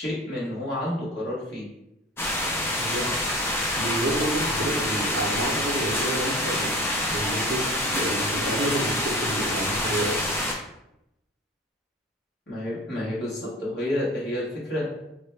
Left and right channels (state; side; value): normal; both; correlation 0.37